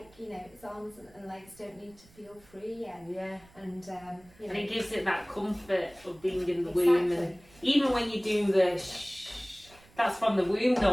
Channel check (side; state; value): right; noise; rumble, 27 dB below the sound